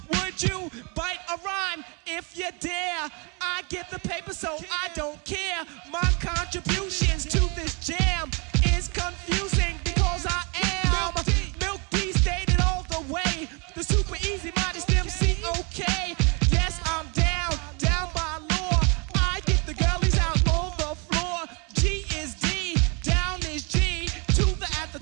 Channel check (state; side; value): quieter; left; 32.1 dB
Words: would you bite a rhyme if you dare? I get the paper, so I don't care. My contributions to this jam is confusing because I am Milk D, stated all the way. The super easy modest MC, okay. Yes, I'm down by law. I get the girlies out on the floor. G is D, down is G. To the at the